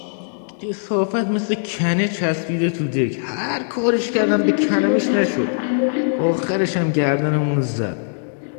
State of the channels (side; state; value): right; silent; digital silence